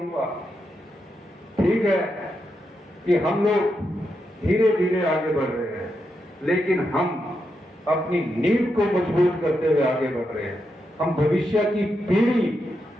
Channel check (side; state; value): both; normal; correlation 0.84